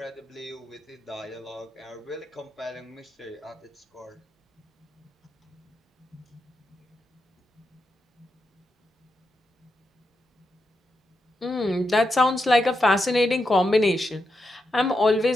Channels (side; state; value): both; normal; correlation 0.86